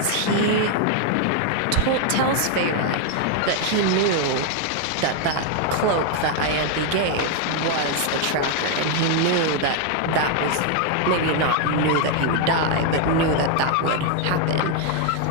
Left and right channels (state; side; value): different; both; correlation 0.00